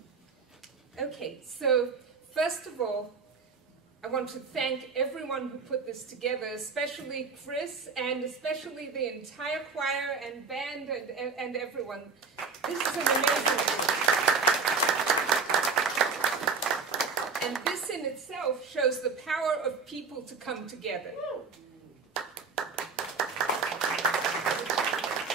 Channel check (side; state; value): left; quieter; 5.1 dB